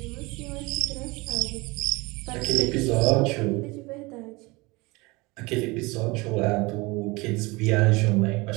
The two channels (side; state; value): left; quieter; 24.1 dB